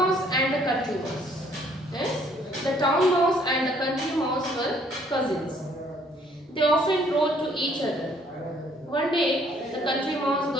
and the country mouse. Yes, the town mouse and the country mouse were cousins. They often wrote to each other. One day, the country mouse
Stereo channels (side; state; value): both; normal; correlation 0.63